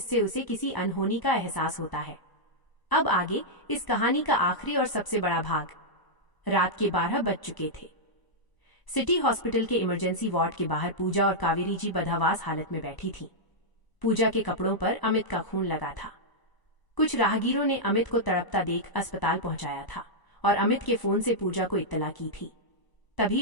उसे किसी अनहोनी का एहसास होता है। अब आगे इस कहानी का आखिरी और सबसे बड़ा भाग। रात के 12 बज चुके थे। सिटी हॉस्पिटल के इमरजेंसी वार्ड के बाहर पूजा और कावेरी जी बदहवास हालत में बैठी थीं। पूजा के कपड़ों पर अमित का खून लगा था। कुछ राहगीरों ने अमित को तड़पता देख अस्पताल पहुंचाया था और अमित के फोन से पूजा को इत्तला की थी। तभी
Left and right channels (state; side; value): late; right; 1.0 ms